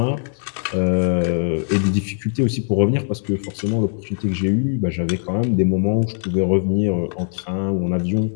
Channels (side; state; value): right; silent; digital silence